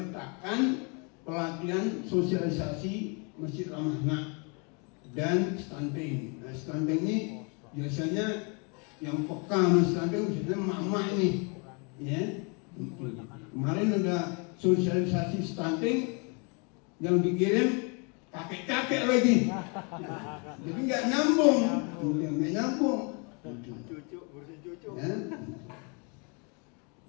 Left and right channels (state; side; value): quieter; right; 34.3 dB